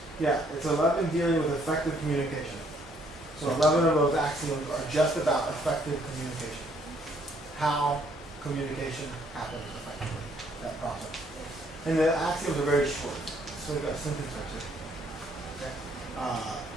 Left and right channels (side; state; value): both; normal; correlation 0.66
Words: Yeah, it's 11 dealing with effective communication. So 11 of those axioms are just about effective communication. How communication happens effectively, that process. And the axioms are very short, so we've got a sentence or two. Okay.